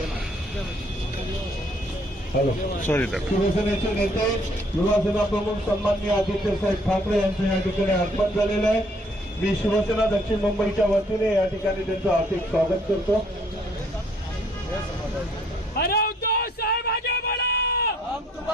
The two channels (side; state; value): both; normal; correlation 0.64